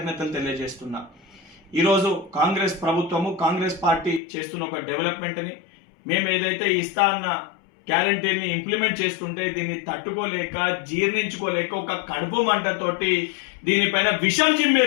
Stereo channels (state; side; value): drops out; right; at 4.2 s